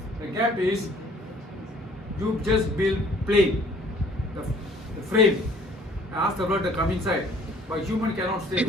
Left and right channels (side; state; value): both; normal; correlation 0.56